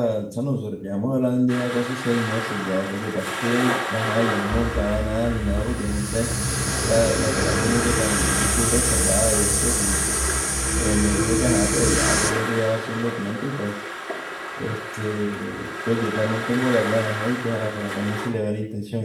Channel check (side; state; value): both; identical; correlation 1.00